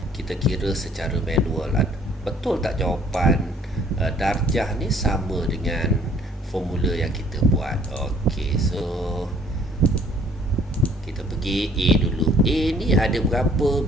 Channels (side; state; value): both; normal; correlation 0.58